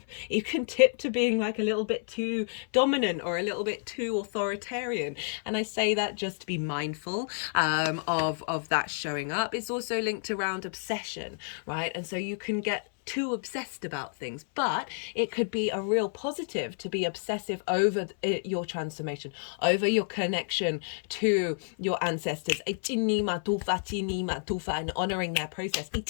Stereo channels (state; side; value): silent; right; 58 dB below the other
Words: to being like a little bit too dominant or a little bit too authoritarian. And I say that just to be mindful of that showing up. It's also linked around obsession, right? And so you can get too obsessed about things, but it could be a real positive to be obsessive over your transformation, over your connection to your ancestors, and honoring their process